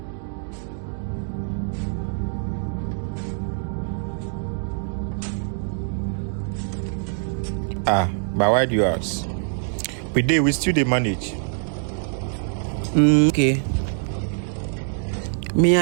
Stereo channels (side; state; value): left; silent; 60 dB below the other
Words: But why do you ask? We still dey manage. Okay. Me,